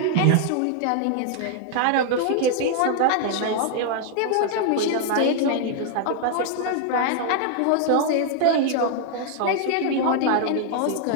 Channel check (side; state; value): both; different; correlation 0.00